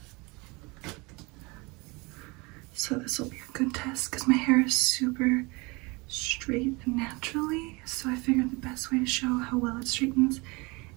So this will be a good test because my hair is super straight naturally. So I figured the best way to show how well it straightens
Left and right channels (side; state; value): left; quieter; 26.0 dB